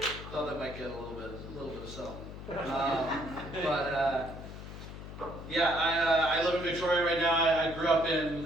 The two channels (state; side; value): noise; left; hum, 11 dB below the sound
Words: Thought that might get a little bit of something. I live in Victoria right now. I grew up in